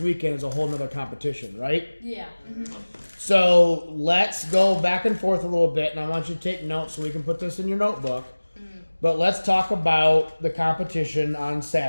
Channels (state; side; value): inverted; both; correlation -1.00